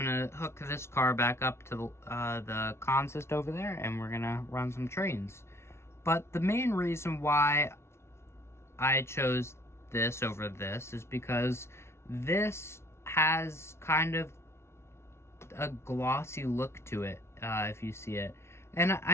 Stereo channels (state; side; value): late; right; 0.13 ms